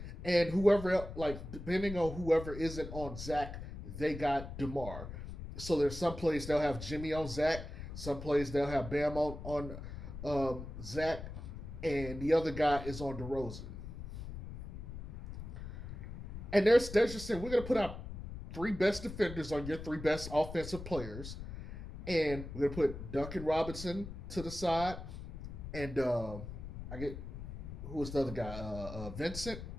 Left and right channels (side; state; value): left; noise; rumble, 9 dB below the sound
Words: And whoever, like, depending on whoever isn't on Zach, they got DeMar. So there's some plays they'll have Jimmy on Zach, some plays they'll have Bam on Zach, and the other guy is on DeRozan. And they're just saying, we're going to put out three best defenders on your three best offensive players, and we're going to put Duncan Robinson to the side, and I get who was the other guy? Vincent.